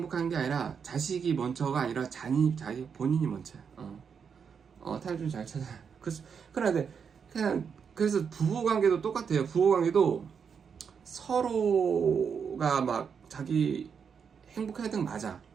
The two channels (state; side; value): quieter; left; 6.6 dB